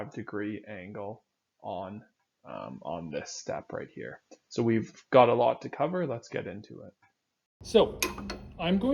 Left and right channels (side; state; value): both; identical; correlation 1.00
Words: angle on this step right here. So we've got a lot to cover. Let's get into it. So I'm